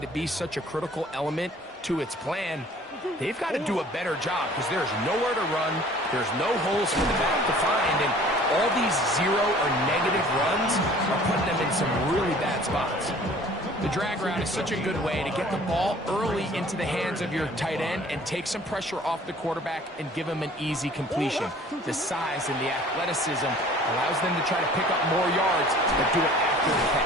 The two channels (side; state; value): both; normal; correlation 0.50